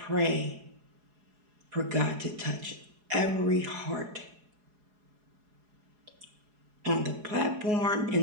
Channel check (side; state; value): left; late; 4.8 ms